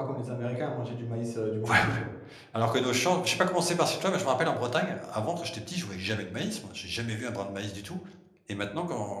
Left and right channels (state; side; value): identical; both; correlation 1.00